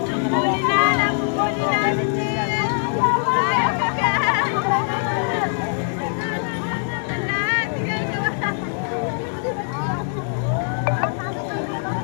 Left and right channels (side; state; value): right; silent; 64 dB below the other